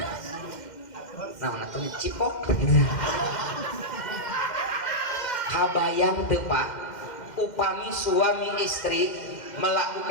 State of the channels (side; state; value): right; late; 2.1 ms